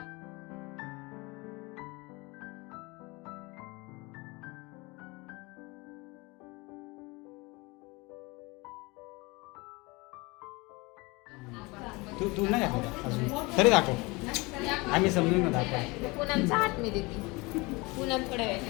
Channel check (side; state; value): right; quieter; 25.0 dB